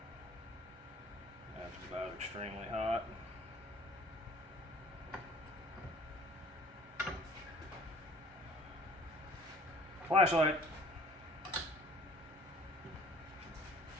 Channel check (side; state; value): both; normal; correlation 0.53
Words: that's about extremely hot. Flashlight.